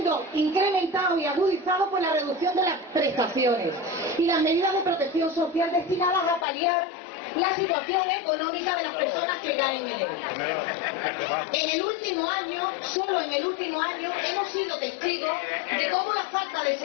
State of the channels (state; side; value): drops out; right; at 6.5 s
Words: incrementado y agudizado por la reducción de las prestaciones y las medidas de protección social destinadas a paliar la situación económica de las personas que caen en él. En el último año, solo en el último año, hemos sido testigos de cómo la falta de